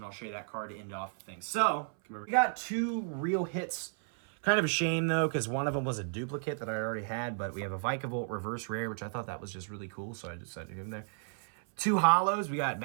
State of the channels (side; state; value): left; silent; 56 dB below the other